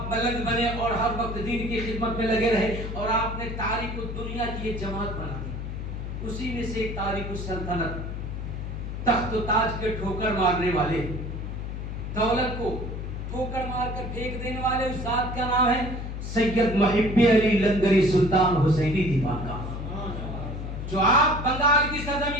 ملنگ بنے اور ہر وقت دین کی خدمت میں لگے رہے اور آپ نے تاریخ دنیا کی ایک جماعت بنا دی. اسی میں سے ایک تاریخ السلطنت, تخت و تاج کے ٹھوکر مارنے والے, دولت کو ٹھوکر مار کر پھینک دینے والے اس ذات کا نام ہے سید محب علی لنگری سلطان حسینی دیوان کا, جو آپ بنگال کی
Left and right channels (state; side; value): noise; left; hum, 6 dB below the sound